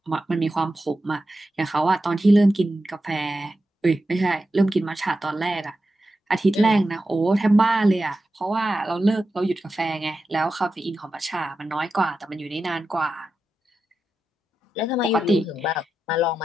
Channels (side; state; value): both; normal; correlation 0.90